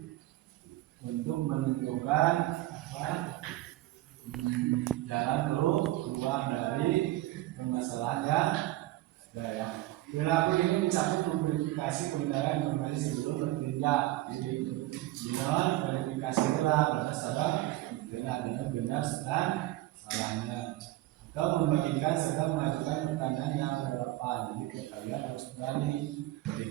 untuk menentukan jalan keluar dari permasalahan yang ada. Perilaku ini mencakup memverifikasi kebenaran informasi sebelum bertindak. Jadi verifikasi adalah berdasarkan dengan benar dan salahnya, atau membagikan serta mengajukan pertanyaan yang relevan. Jadi kalian harus berani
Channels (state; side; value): quieter; left; 16.8 dB